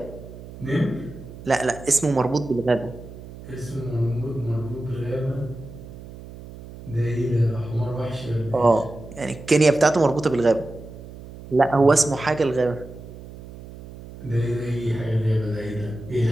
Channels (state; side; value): noise; right; hum, 15 dB below the sound